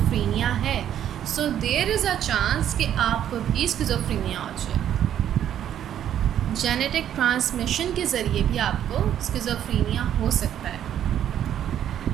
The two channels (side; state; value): left; quieter; 10.4 dB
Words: है, so there is a chance कि आपको भी स्किज़ोफ्रेनिया हो जाए. जेनेटिक ट्रांसमिशन के ज़रिए भी आपको स्किज़ोफ्रेनिया हो सकता है.